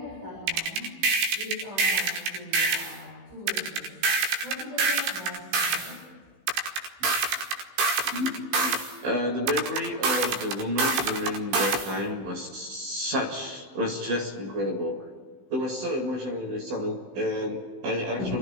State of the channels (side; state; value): left; late; 16 ms